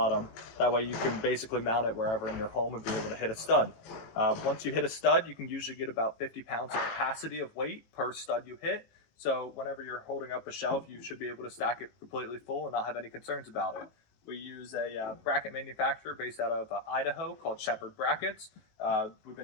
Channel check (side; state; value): right; late; 18 ms